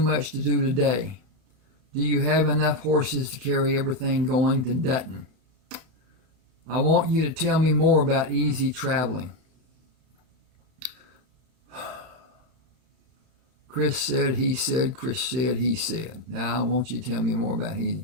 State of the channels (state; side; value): late; left; 31 ms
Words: to do today. Do you have enough horses to carry everything going to Dutton? I want you to tell me more about easy traveling. Chris said, he said, Chris said, he said. Now I want you to tell me more about easy.